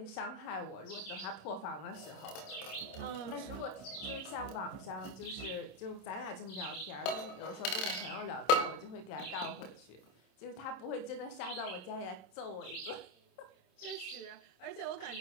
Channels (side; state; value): right; late; 27 ms